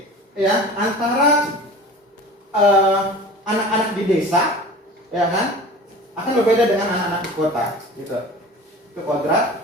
ya, antara anak-anak di desa, ya kan, akan berbeda dengan anak-anak di kota, gitu. Itu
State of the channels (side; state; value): both; normal; correlation 0.38